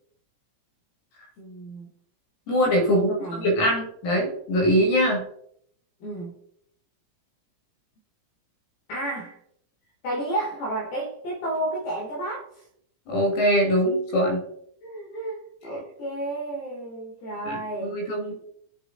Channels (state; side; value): late; right; 17 ms